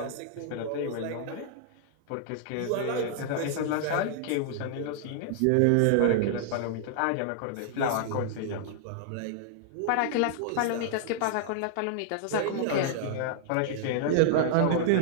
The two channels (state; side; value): different; both; correlation -0.01